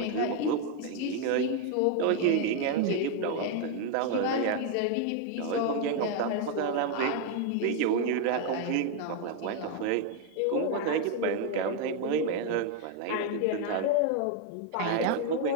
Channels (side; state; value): both; different; correlation 0.01